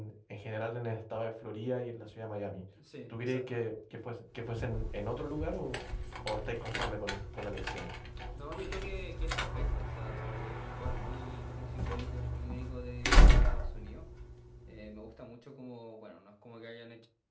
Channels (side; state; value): both; identical; correlation 1.00